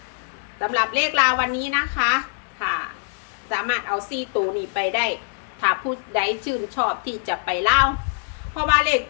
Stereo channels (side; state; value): right; silent; digital silence